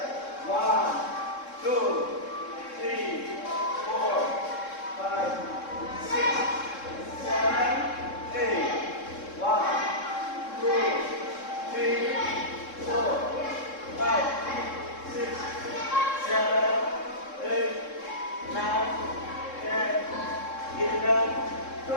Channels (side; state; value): right; late; 3.7 ms